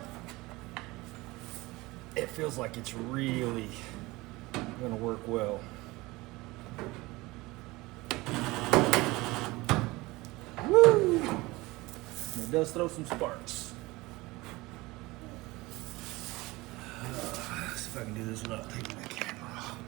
feels like it's really gonna work well. Woo! It does throw some sparks. Let's see if I can do this without taking the camera off.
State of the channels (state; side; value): quieter; left; 21.4 dB